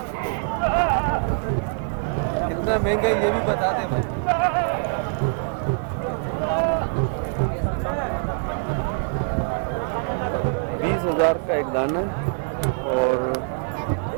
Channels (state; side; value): silent; left; digital silence